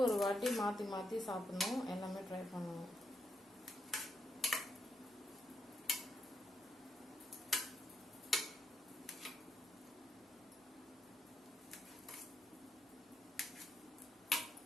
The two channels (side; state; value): both; normal; correlation 0.80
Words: வாட்டி மாற்றி மாற்றி சாப்பிடணும், எல்லாமே ட்ரை பண்ணணும்.